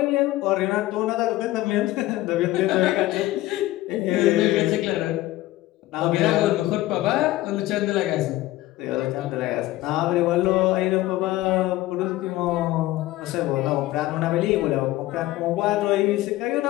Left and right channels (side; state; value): right; quieter; 16.9 dB